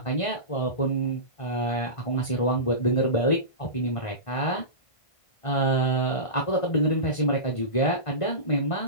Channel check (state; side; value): late; right; 1.5 ms